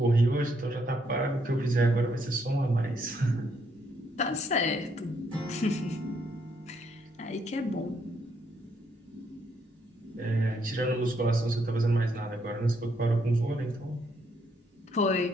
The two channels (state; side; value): normal; both; correlation 0.73